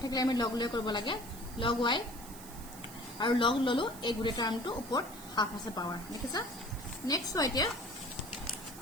থাকিলে আমি log লৈ কৰিব লাগে log y আৰু log ললো এই গুৰে টাৰ্মটো ওপৰত half আছে পাৱাৰ দেখিছা নেক্সট এতিয়া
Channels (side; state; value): right; noise; hiss, 16 dB below the sound